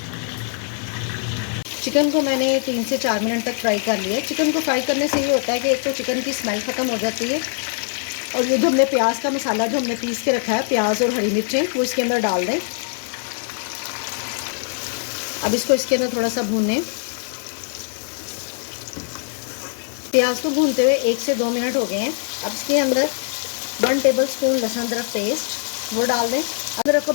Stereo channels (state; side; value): silent; right; digital silence